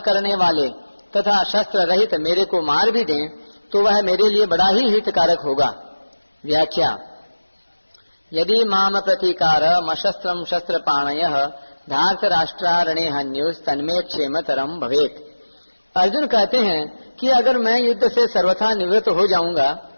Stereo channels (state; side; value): inverted; both; correlation -1.00